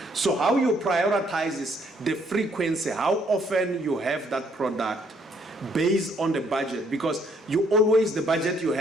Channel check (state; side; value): normal; both; correlation 0.67